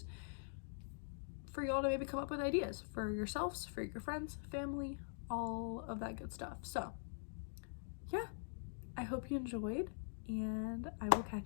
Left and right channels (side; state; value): right; silent; digital silence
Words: for y'all to maybe come up with ideas for yourselves, for your friends, family, all of that good stuff. So yeah, I hope you enjoyed, and I will